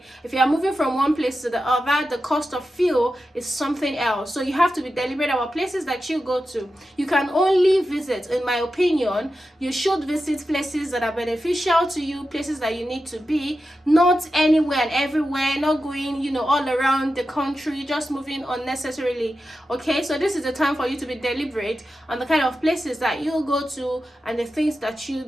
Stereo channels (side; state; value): both; normal; correlation 0.91